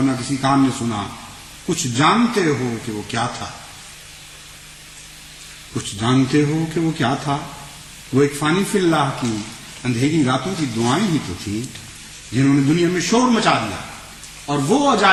نہ کسی کان نے سنا. کچھ جانتے ہو کہ وہ کیا تھا؟ کچھ جانتے ہو کہ وہ کیا تھا؟ وہ ایک فانی فی اللہ کی اندھیری راتوں کی دعائیں ہی تو تھیں جنہوں نے دنیا میں شور مچا دیا اور وہ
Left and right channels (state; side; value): identical; both; correlation 1.00